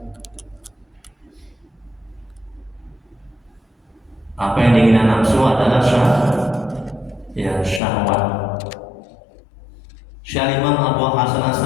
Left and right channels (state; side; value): drops out; right; at 7.8 s